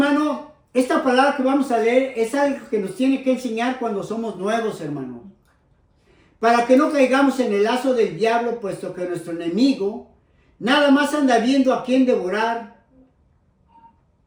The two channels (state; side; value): identical; both; correlation 1.00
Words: esta palabra que vamos a leer es algo que nos tiene que enseñar cuando somos nuevos, hermano. Para que no caigamos en el lazo del diablo, puesto que nuestro enemigo nada más anda viendo a quién devorar.